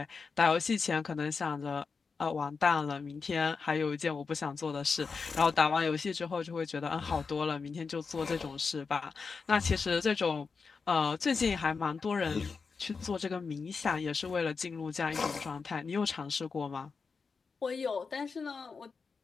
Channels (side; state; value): right; quieter; 5.0 dB